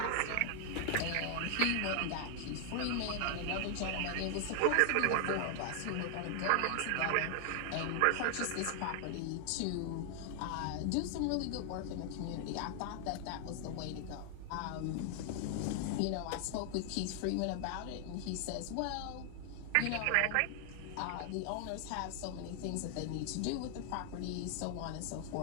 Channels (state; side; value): different; both; correlation 0.00